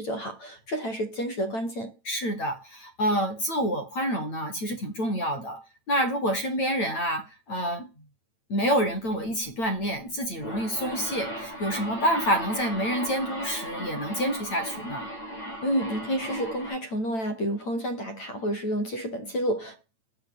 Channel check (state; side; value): late; right; 8.9 ms